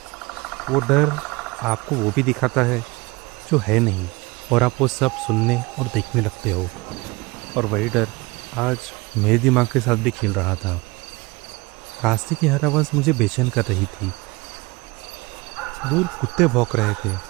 वो डर आपको वो भी दिखाता है जो है नहीं, और आप वो सब सुनने और देखने लगते हो। और वही डर आज मेरे दिमाग के साथ भी खेल रहा था। रास्ते की हर आवाज़ मुझे बेचैन कर रही थी। दूर कुत्ते भौंक रहे थे,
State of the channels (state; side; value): quieter; left; 24.0 dB